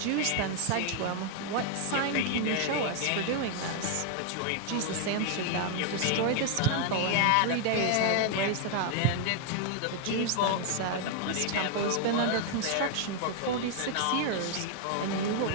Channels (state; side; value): different; both; correlation 0.00